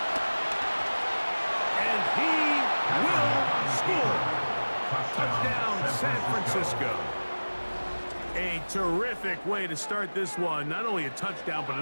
And he will score. San Francisco. A terrific way to start this one. Not only a touchdown, but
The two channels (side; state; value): both; inverted; correlation -1.00